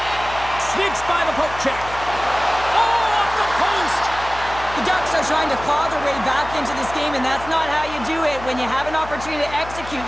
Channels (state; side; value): noise; left; hum, 14 dB below the sound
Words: Sneaks by the poke check. Oh, off the post! The Ducks are trying to claw their way back into this game, and that's not how you do it. When you have an opportunity to execute,